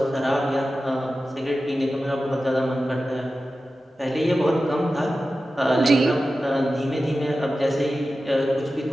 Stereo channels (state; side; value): normal; both; correlation 0.94